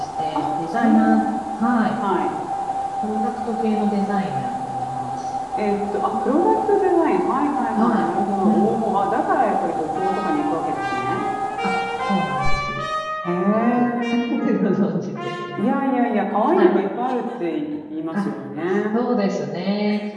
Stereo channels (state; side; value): identical; both; correlation 1.00